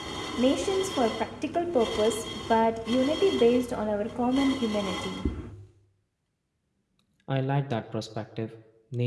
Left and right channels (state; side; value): identical; both; correlation 1.00